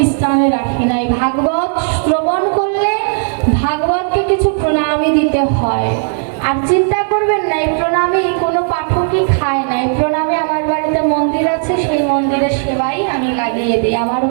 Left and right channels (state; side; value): silent; left; digital silence